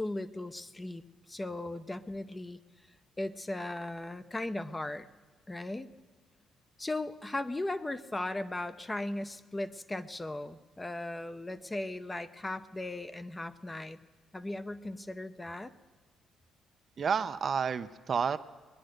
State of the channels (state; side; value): normal; both; correlation 0.89